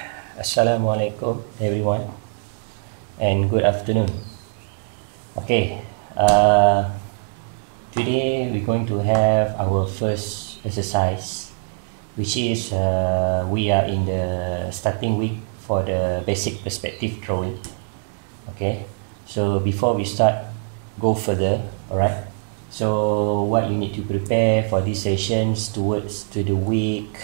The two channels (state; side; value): silent; left; digital silence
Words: Assalamualaikum everyone and good afternoon. Okay, today we're going to have our first exercise, which is we are in the starting week for the basic perspective drawing. Okay, so before we start, go further, alright? So what you need to prepare for these sessions towards to the week